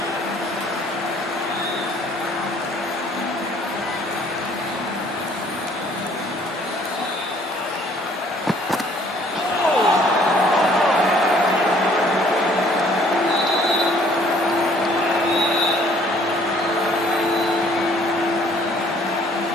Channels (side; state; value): both; normal; correlation 0.59